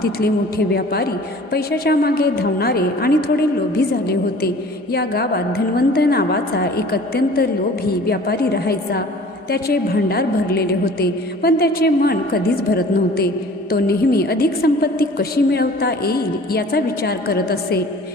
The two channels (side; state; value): both; normal; correlation 0.47